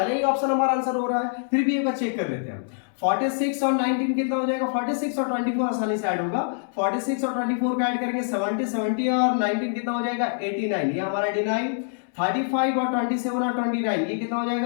ही ऑप्शन हमारा आंसर हो रहा है। फिर भी एक बार चेक कर लेते हैं। 46 और 19 कितना हो जाएगा? 46 और 24 आसानी से ऐड होगा। 46 और 24 को ऐड करेंगे 70 और 19 कितना हो जाएगा? 89। ये हमारा 89। 35 और 27 और 29 ये कितना हो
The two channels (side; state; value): right; silent; digital silence